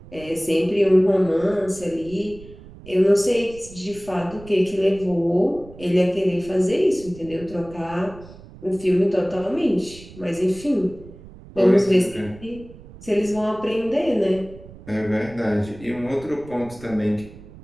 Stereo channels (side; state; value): right; noise; rumble, 19 dB below the sound